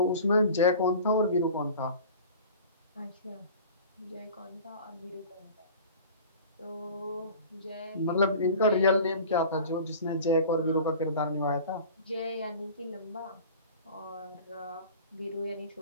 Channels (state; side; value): inverted; both; correlation -0.41